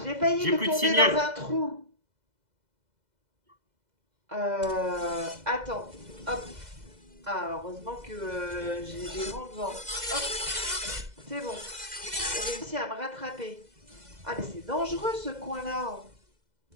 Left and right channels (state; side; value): late; left; 2.0 ms